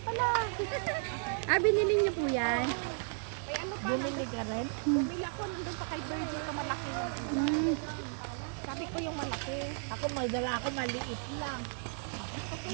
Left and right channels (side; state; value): left; silent; 55 dB below the other